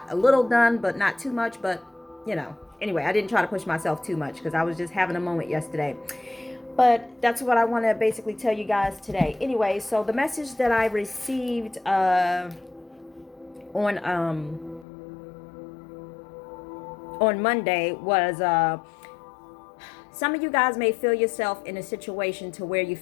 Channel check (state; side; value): drops out; right; at 14.9 s